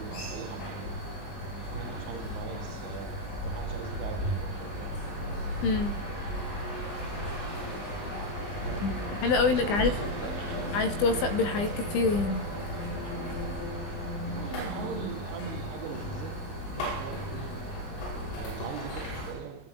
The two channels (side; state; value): right; late; 20 ms